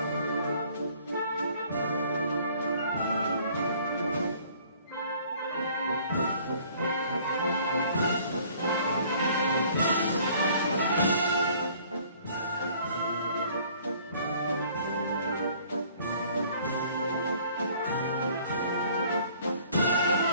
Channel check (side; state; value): both; inverted; correlation -0.56